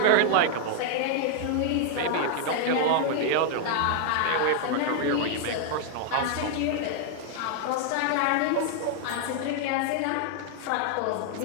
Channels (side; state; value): both; different; correlation 0.00